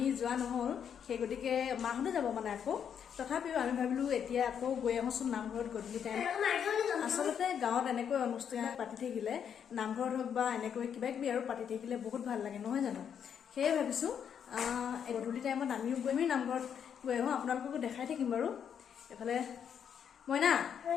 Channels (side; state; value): right; quieter; 8.0 dB